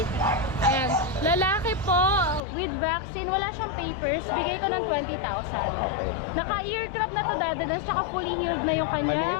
Ayan. Lalaki po with vaccine. Wala siyang papers. Bigay ko ng 20,000. Okay. Naka-ear crop na to dati. Tsaka fully healed na yung Maliit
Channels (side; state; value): right; drops out; at 2.4 s